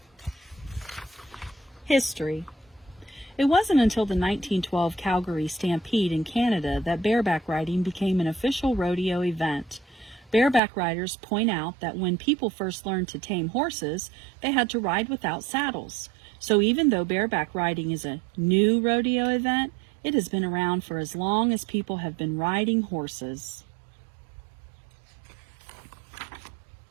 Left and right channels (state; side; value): drops out; left; at 10.6 s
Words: History. It wasn't until the 1912 Calgary Stampede in Canada that bareback riding became an official rodeo event. Bareback riders point out that when people first learned to tame horses, they had to ride without saddles. So even though bareback riding is a new rodeo event, it has been around for as long as people have been riding horses.